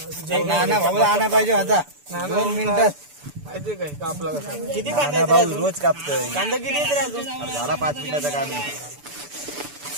आणा पाहिजे आता 2 मिनिटात. माहिती काय कापला किती कांदा रोज कापतोय. कांदा किती येते रे अजून? झाला 5 मिनिटाचा कांदा.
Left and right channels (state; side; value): late; left; 6.9 ms